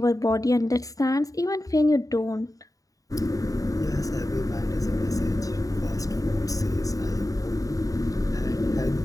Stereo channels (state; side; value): late; right; 0.17 ms